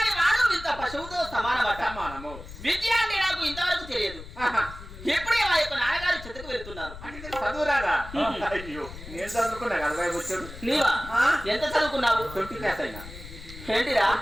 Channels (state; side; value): noise; left; rumble, 14 dB below the sound